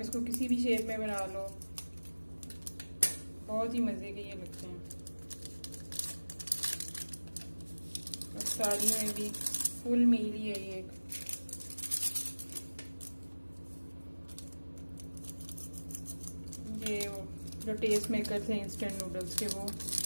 इसको किसी भी शेप में बना लो, बहुत ही मज़े के ये लगते हैं। और सारी में भी फुल मील ही है ये एक। ये जो टेस्ट मेकर थे इंस्टेंट नूडल्स के वो।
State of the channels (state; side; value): inverted; both; correlation -1.00